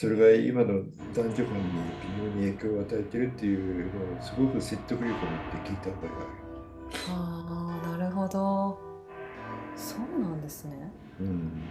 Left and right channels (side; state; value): both; identical; correlation 1.00